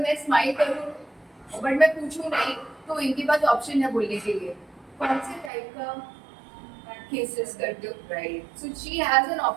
स्माइल करूँ बट मैं पूछूं नहीं तो इनके पास ऑप्शन है बोलने के लिए कौन से टाइप का केसेस करते हो right so she has an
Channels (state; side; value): drops out; left; at 5.5 s